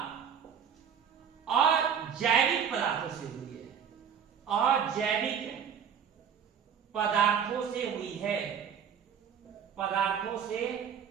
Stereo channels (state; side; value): quieter; left; 7.7 dB